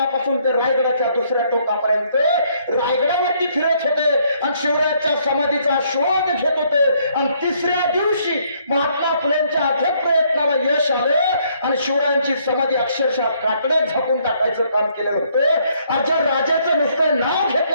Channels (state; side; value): inverted; both; correlation -0.68